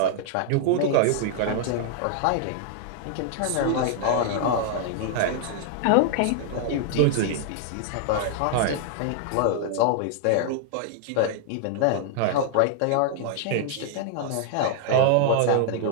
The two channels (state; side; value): different; both; correlation -0.01